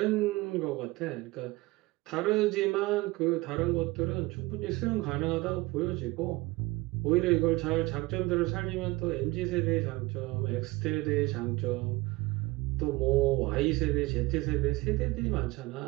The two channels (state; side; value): quieter; left; 21.6 dB